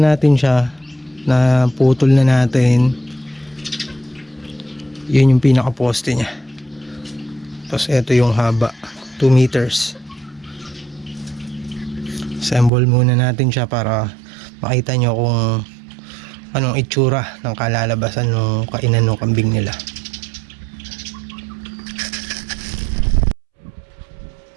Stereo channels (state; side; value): drops out; left; at 12.7 s